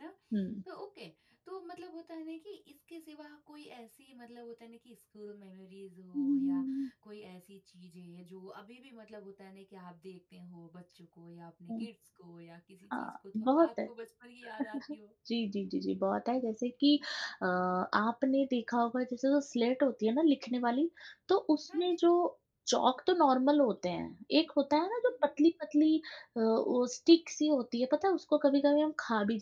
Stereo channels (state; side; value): identical; both; correlation 1.00